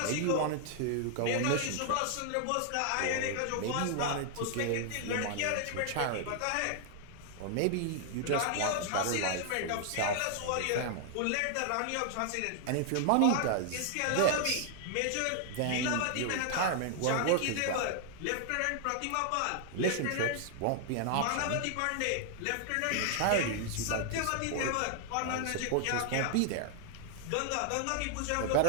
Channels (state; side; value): different; both; correlation -0.01